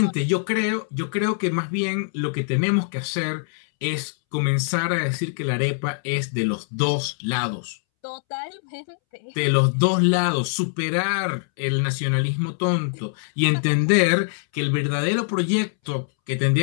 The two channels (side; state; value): right; silent; 63 dB below the other